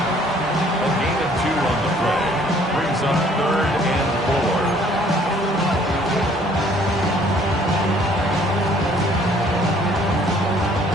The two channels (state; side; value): normal; both; correlation 0.59